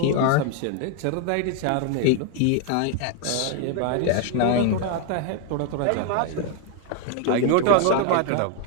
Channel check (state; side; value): different; both; correlation 0.00